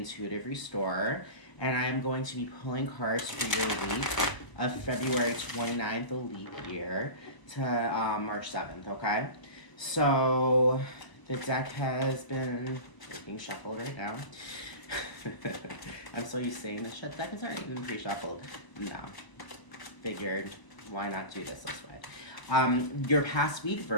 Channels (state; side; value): late; right; 1.0 ms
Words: Restorer, and I am going to be pulling cards for your week of February 29th, the leap year, to March 7th, okay? So, the deck has been being shuffled right now. I'm so used to saying this deck is already been pre-shuffled. No. Figured, why not do this way? Your past week,